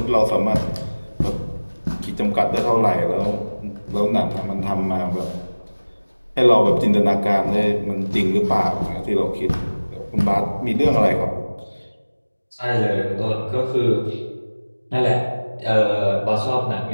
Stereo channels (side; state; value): both; inverted; correlation -1.00